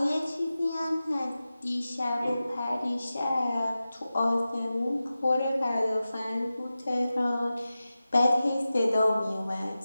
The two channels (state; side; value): inverted; both; correlation -0.94